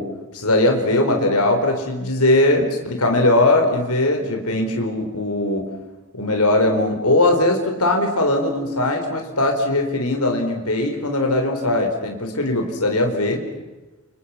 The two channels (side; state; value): both; normal; correlation -0.19